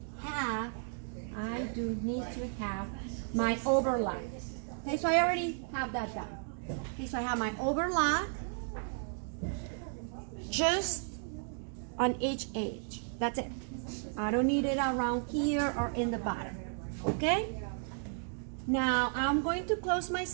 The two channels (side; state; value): left; silent; 55 dB below the other